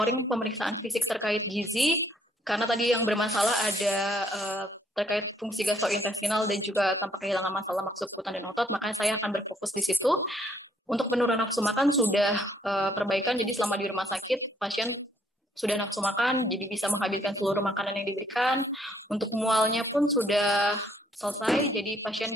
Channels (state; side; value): normal; both; correlation 0.66